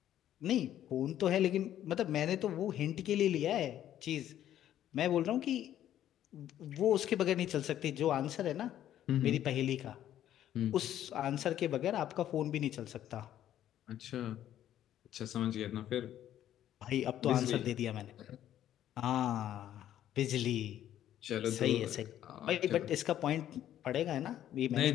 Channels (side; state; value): right; quieter; 11.6 dB